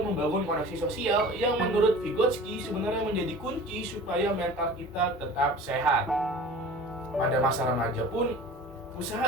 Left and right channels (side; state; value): both; normal; correlation 0.41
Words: membangun koneksi sosial yang menurut Vygotsky sebenarnya menjadi kunci supaya mental kita tetap sehat. Pada masa remaja pun,